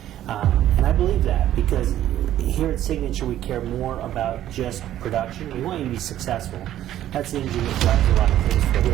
And I believe that, because here at Signature we care more about just production. We want you to be successful. That's the engine that drives a lot of things for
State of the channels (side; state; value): left; quieter; 12.4 dB